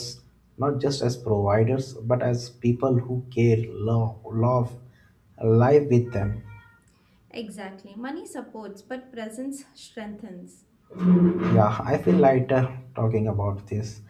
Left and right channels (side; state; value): both; identical; correlation 1.00